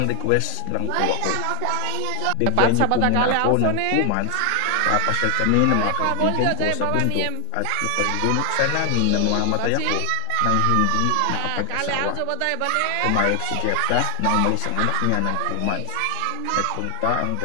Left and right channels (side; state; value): both; different; correlation 0.00